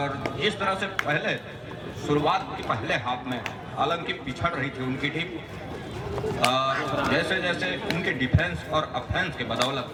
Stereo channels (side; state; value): both; identical; correlation 1.00